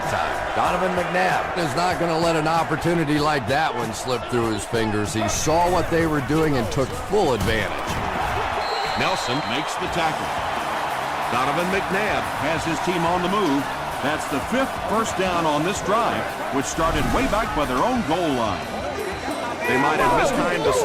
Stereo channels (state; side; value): identical; both; correlation 1.00